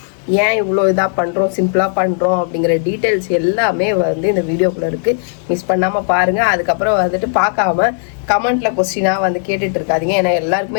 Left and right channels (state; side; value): silent; right; digital silence